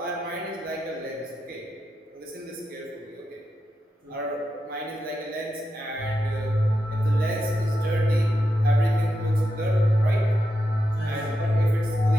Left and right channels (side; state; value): both; normal; correlation 0.87